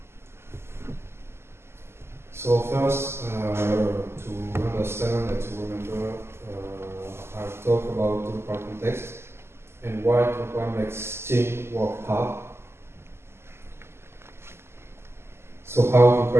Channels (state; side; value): late; left; 0.12 ms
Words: So first, to understand and to remember, I'll talk about Drupal context and why Drupal makes team work hard. So how